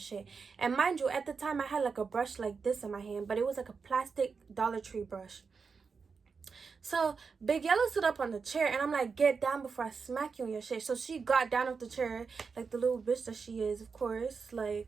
And mind you, at the time I had like a brush like this in my hand, but it was like a plastic Dollar Tree brush. So Big Yellow stood up on the chair and I'm like, get down before I smack you in your shit. So she got down off the chair, like the little bitch that she is, of course. Like,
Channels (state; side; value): quieter; left; 5.2 dB